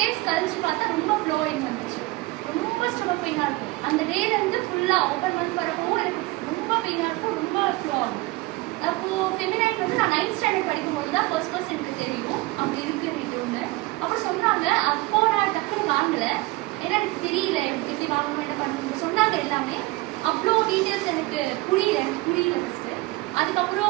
கழிச்சு பார்த்தா ரொம்ப ஃப்ளோயிங் வந்துச்சு. ரொம்ப ஸ்டொமக் பெயினாக இருக்கும். அந்த டேலேருந்து ஃபுல்லாக ஒவ்வொரு மந்த் வரப்போ எனக்கு ரொம்ப பெயினாக இருக்கும், ரொம்ப ஃப்ளோ ஆகும். அப்போது ஃபெமினைன் வந்து நான் 9th ஸ்டாண்டர்ட் படிக்கும்போது தான் ஃபர்ஸ்ட் எனக்கு தெரியும் அப்படி இருக்கு வீட்டுன்னு. அப்புறம் சொன்னாங்க. அப்போ நான் டக்குன்னு வாங்கலை, ஏன்னா எனக்கு தெரியல எப்படி வாங்கணும் என்ன பண்ணணும் சொன்னாங்க எல்லாமே. அவ்வளோ டீட்டெயில்ஸ் எனக்கு புரியல ஃபஸ்ட்டு.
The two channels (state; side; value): quieter; left; 21.2 dB